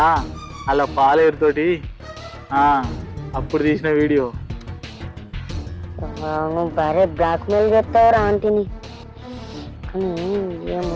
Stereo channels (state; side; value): identical; both; correlation 1.00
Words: అలా పాలేరుతోటి అప్పుడు తీసిన వీడియో. నువ్వు భారీ బ్లాక్మెయిల్ చేస్తావురా ఆంటీని. కానీ